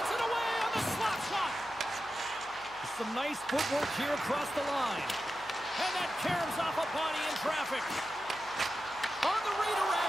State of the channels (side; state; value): left; noise; hum, 24 dB below the sound